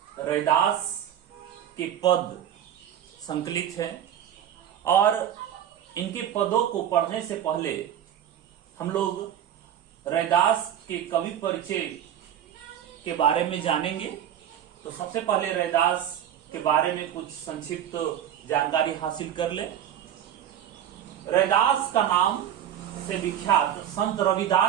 रैदास के पद संकलित हैं और इनके पदों को पढ़ने से पहले हम लोग रैदास के कवि परिचय के बारे में जानेंगे। तो सबसे पहले रैदास के बारे में कुछ संक्षिप्त जानकारी हासिल कर ले। रैदास का नाम से विख्यात संत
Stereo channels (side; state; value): left; quieter; 10.3 dB